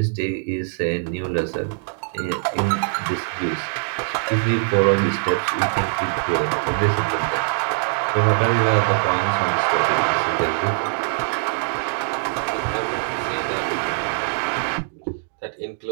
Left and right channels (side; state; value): left; silent; digital silence